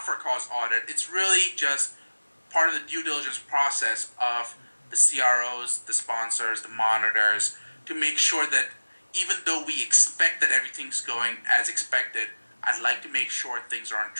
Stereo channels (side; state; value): both; inverted; correlation -1.00